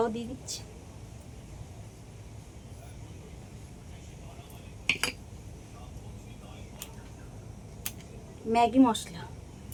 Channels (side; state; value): both; identical; correlation 1.00